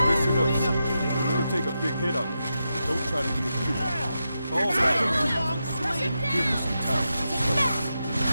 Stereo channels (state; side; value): inverted; both; correlation -0.87